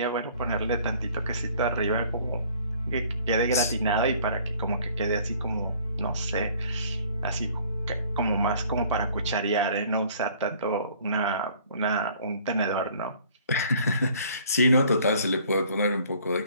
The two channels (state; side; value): inverted; both; correlation -0.55